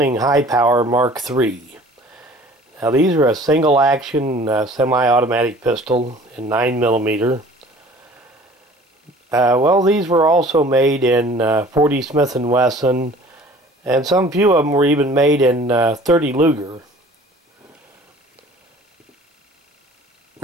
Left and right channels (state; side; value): normal; both; correlation 0.48